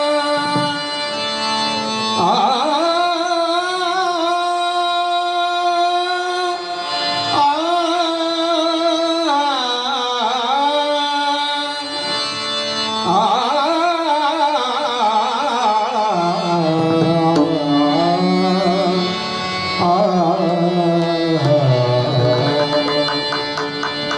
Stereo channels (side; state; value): both; identical; correlation 1.00